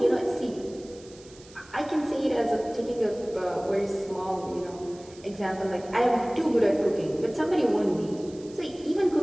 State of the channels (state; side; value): noise; right; hiss, 23 dB below the sound